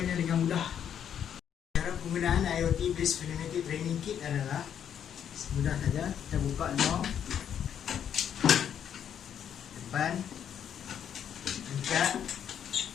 dengan mudah. Cara penggunaan IoT Based Pneumatic Training Kit adalah mudah saja. Kita buka lock depan, angkat,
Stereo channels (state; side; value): quieter; right; 9.0 dB